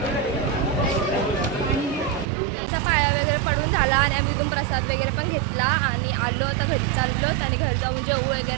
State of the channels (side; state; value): left; drops out; at 2.2 s